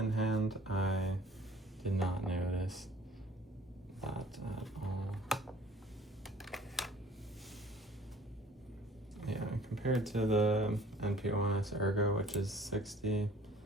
hand, I did not notice that at all. Yeah, compared to the NP-01 Ergo, which is 60,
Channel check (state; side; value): normal; both; correlation 0.52